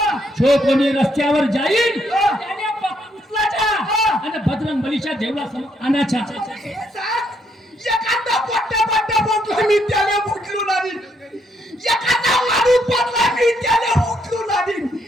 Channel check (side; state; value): both; normal; correlation 0.73